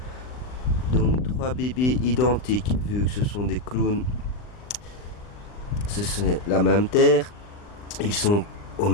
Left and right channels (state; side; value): late; right; 39 ms